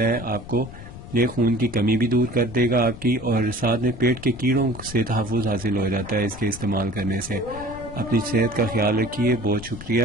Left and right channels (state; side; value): noise; left; rumble, 14 dB below the sound